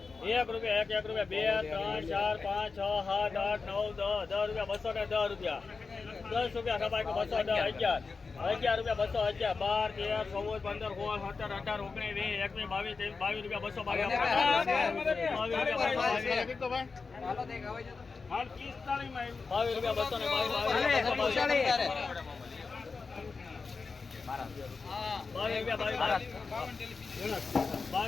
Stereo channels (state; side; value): quieter; right; 4.5 dB